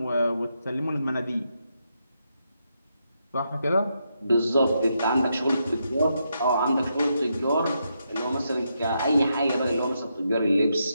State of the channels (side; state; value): both; inverted; correlation -0.82